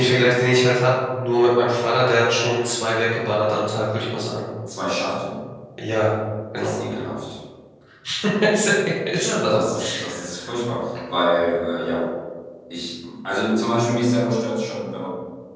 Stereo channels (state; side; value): identical; both; correlation 1.00